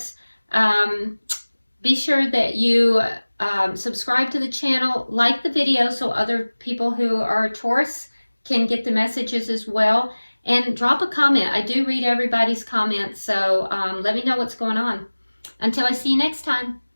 Be sure that you subscribe to the channel, like the video so other people who are Taurus can get the messages as well, and drop a comment. I do read everybody's comments, so let me know what's going on. Until I see you next time,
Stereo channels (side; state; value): both; inverted; correlation -1.00